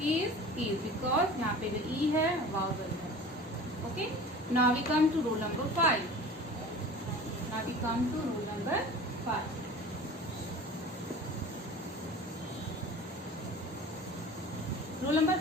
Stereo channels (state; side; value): normal; both; correlation 0.40